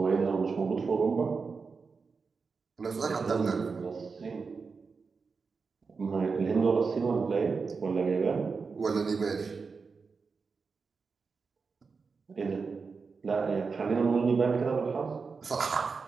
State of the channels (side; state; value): left; quieter; 4.9 dB